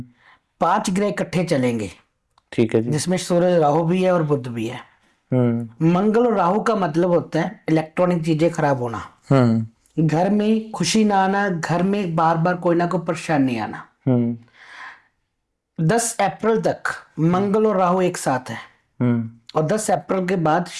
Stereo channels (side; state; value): both; identical; correlation 1.00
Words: 5 ग्रह इकट्ठे चलेंगे। ठीक है जी। जिसमें सूर्य राहु भी है और बुध भी है। मंगल और राहु का मतलब होता है इलेक्ट्रॉनिक चीजें खराब होना, घर में खुशी ना आना, घर में बार बार कोई ना कोई परेशानी आना। 10 अप्रैल तक मंगल और राहु एक साथ है और 10 अप्रैल के बाद